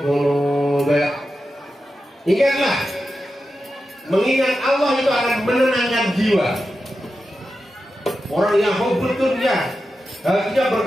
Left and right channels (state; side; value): normal; both; correlation 0.91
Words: qulub. Ingatlah, mengingat Allah itu akan menenangkan jiwa. Orang yang hubbud dunya, hatinya